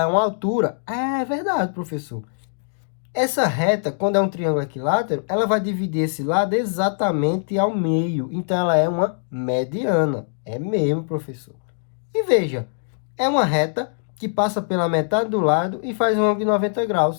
é uma altura. É verdade, professor. Essa reta, quando é um triângulo equilátero, ela vai dividir esse lado exatamente ao meio, então ela é uma mediana. É mesmo, professor. E veja, é uma reta que passa pela metade do lado e faz um ângulo de 90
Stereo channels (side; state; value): right; silent; digital silence